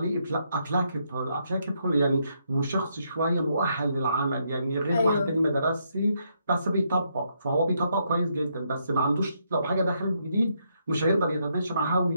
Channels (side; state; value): both; inverted; correlation -0.76